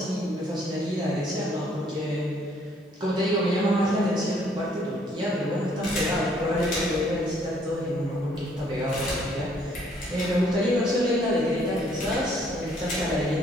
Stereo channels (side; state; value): both; normal; correlation 0.64